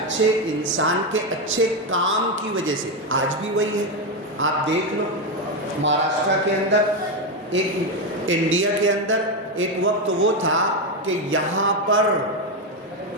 انسان کے اچھے کام کی وجہ سے آج بھی وہی ہے۔ آپ دیکھ لو مہاراشٹرا کے اندر، ایک انڈیا کے اندر ایک وقت وہ تھا کہ یہاں پر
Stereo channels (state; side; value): normal; both; correlation 0.09